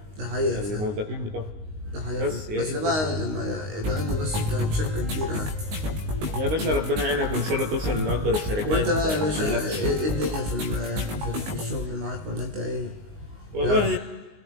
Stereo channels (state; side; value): late; left; 19 ms